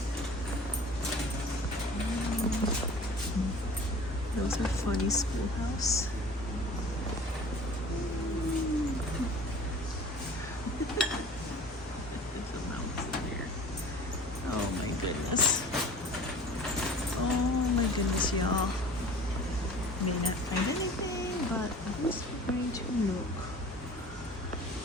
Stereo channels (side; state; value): both; normal; correlation 0.44